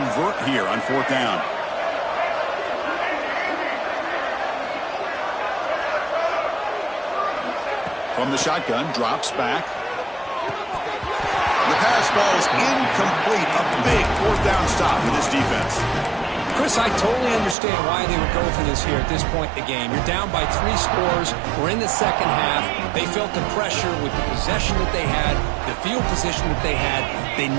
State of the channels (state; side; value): drops out; left; at 17.6 s